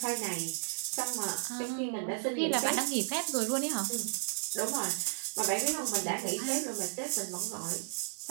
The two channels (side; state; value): left; silent; digital silence